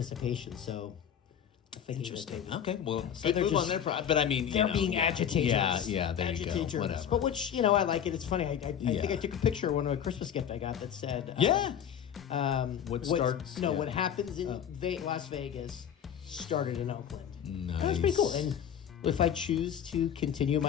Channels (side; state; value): right; quieter; 8.9 dB